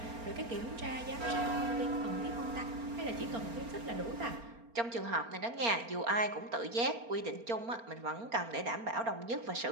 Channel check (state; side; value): late; left; 4.3 ms